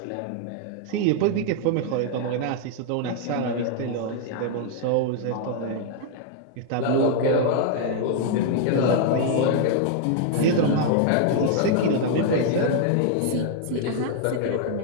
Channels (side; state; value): both; different; correlation 0.00